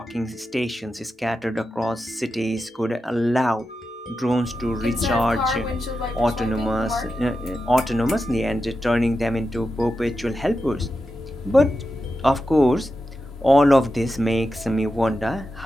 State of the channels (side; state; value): both; normal; correlation 0.90